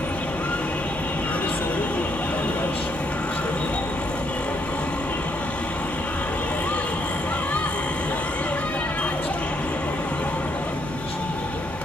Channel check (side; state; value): both; normal; correlation 0.73